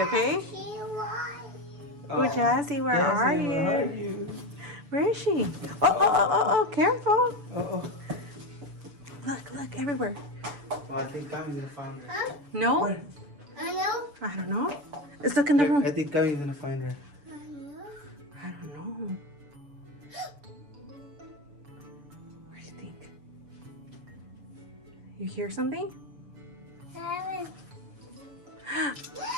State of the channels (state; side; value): late; left; 6.9 ms